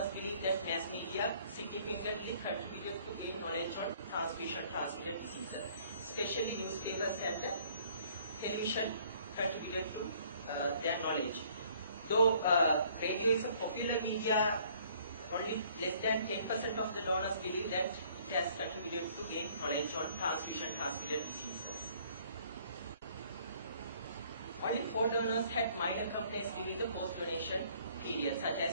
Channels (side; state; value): both; inverted; correlation -0.59